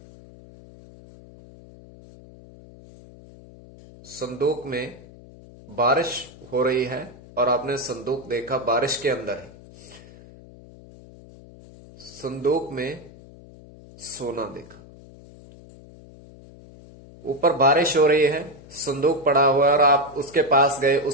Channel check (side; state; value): left; noise; hum, 21 dB below the sound